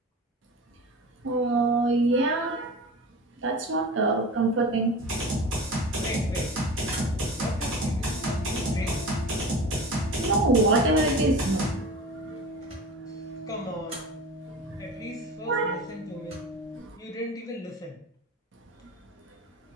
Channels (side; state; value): both; normal; correlation 0.34